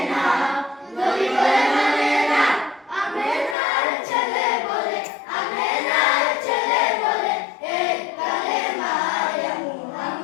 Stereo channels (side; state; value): right; drops out; at 3.6 s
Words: না নবী বলে মানে না আমেনার ছেলে বলে আমেনার ছেলে বলে এক কালেমা ইয়া